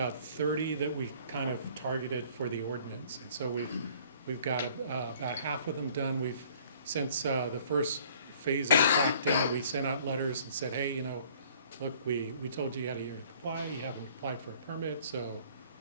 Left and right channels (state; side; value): inverted; both; correlation -0.55